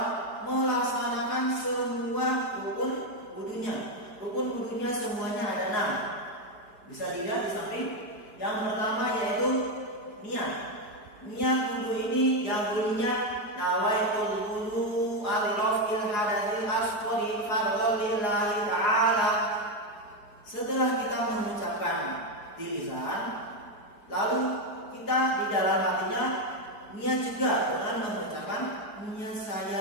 melaksanakan semua rukun wudhunya. Rukun wudhunya semuanya ada 6. Bisa dilihat di samping. Yang pertama yaitu niat. Niat wudhu ini yang bunyinya nawaitul wudhu alirafil hadatsil asghari fardhon lillahi ta'ala. Setelah kita mengucapkan di lisan, lalu kita di dalam hatinya niat juga dengan mengucapkan niat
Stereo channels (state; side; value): late; right; 4.8 ms